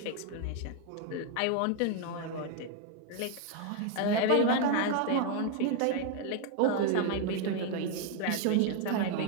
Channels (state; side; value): different; both; correlation 0.01